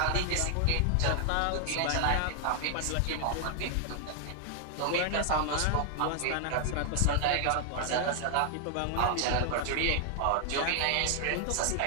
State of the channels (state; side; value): different; both; correlation 0.00